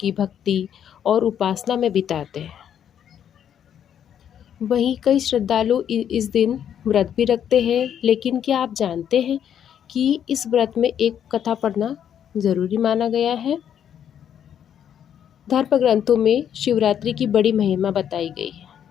भक्ति और उपासना में बिताते हैं। वहीं कई श्रद्धालु इस दिन व्रत भी रखते हैं, लेकिन क्या आप जानते हैं कि इस व्रत में एक कथा पढ़ना ज़रूरी माना गया है। धर्म ग्रंथों में शिवरात्रि की बड़ी महिमा बताई गई है।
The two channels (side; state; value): right; quieter; 9.2 dB